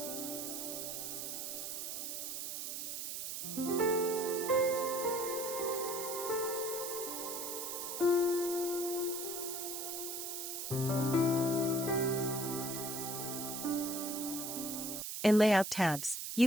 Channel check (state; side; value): noise; right; hiss, 4 dB below the sound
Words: In Layout tabs,